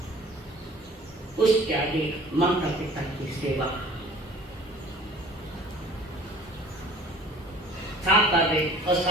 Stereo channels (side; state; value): both; normal; correlation 0.49